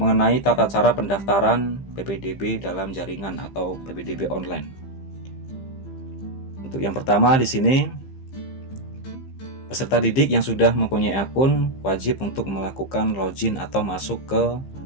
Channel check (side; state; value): right; late; 15 ms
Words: tata cara pendaftaran PPDB dalam jaringan atau PPDB online. Untuk yang pertama di sini, peserta didik yang sudah mempunyai akun wajib untuk melakukan login atau masuk ke